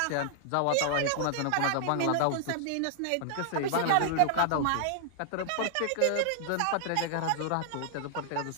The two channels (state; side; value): different; both; correlation -0.01